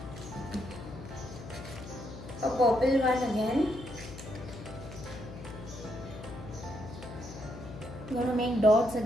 a purple one again. I'm going to make dots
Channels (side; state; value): left; noise; hum, 12 dB below the sound